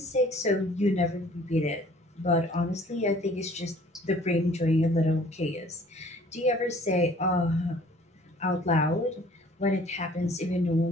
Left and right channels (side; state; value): both; normal; correlation 0.54